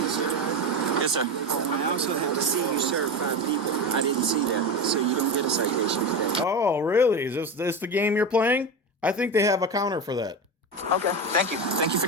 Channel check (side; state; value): both; normal; correlation 0.20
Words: sir. Yes, sir. I also have to see you serve 5 people. I didn't see that, so you don't get a citation today. Oh, really? Is this the game you're playing? I think they have a counter for that. Okay. Thank you. Thank you for